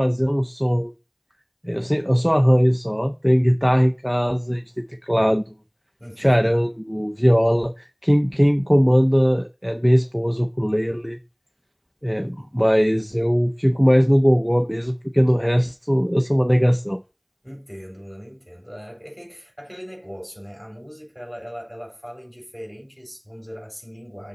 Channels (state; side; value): identical; both; correlation 1.00